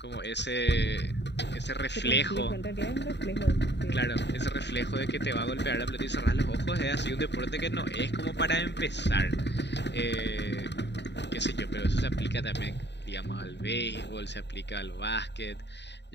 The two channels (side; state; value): right; late; 0.50 ms